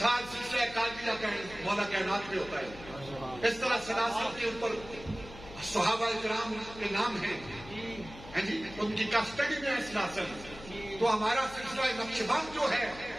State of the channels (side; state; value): left; noise; hum, 16 dB below the sound